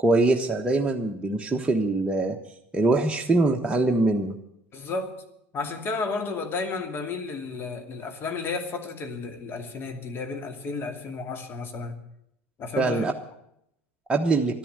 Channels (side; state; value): both; normal; correlation 0.66